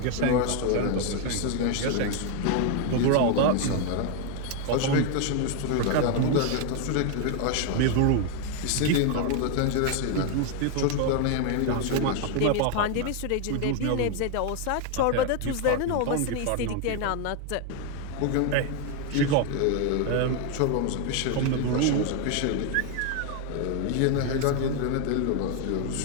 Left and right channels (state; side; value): different; both; correlation 0.01